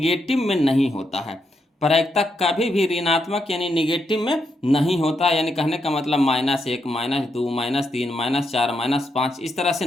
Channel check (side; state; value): both; normal; correlation 0.81